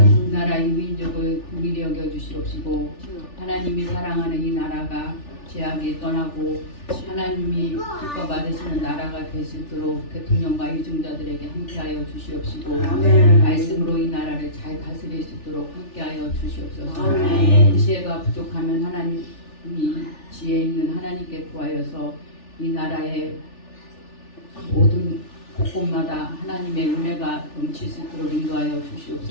이 나라 이 민족을 긍휼히 여겨 주시옵시고 하나님이 사랑하는 이 나라가 죄악이 떠나고 하나님이 기뻐 받으시는 나라가 될 수 있도록 대통령과 유종자들에게 함께하여 주시옵시고 아멘. 말씀으로 이 나라를 잘 다스릴 수 있도록 함께하여 주시옵소서. 아멘. 지혜가 부족하면 하나님이 지혜 있는 하나님께 구하여서 이 나라의 모든 곳곳마다 하나님의 은혜가 넘칠 수 있도록 인도하여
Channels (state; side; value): late; right; 3.4 ms